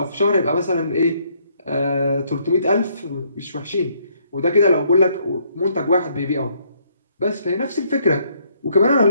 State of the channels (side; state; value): both; inverted; correlation -0.69